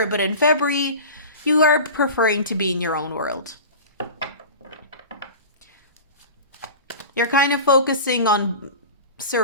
but in February, you are preferring to be in your own world. You're kind of focusing on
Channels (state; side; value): inverted; both; correlation -0.34